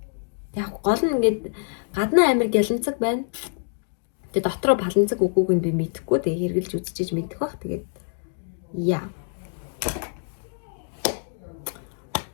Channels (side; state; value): right; silent; digital silence